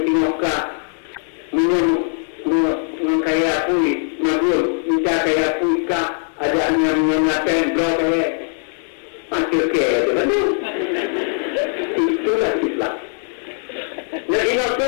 dinoka, mengkaya pui, nabur, minta kaya pui kah? Ada yang mengatakan blok masih ke betul itulah Islam. Nah ini apa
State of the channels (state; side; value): silent; right; 66 dB below the other